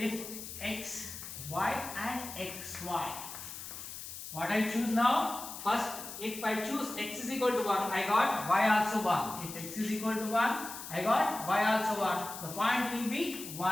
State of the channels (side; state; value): left; noise; hiss, 10 dB below the sound